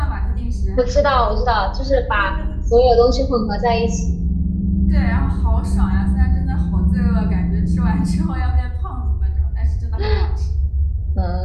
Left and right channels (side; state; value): both; identical; correlation 1.00